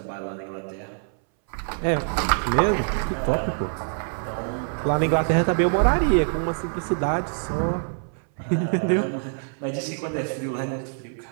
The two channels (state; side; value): silent; left; 60 dB below the other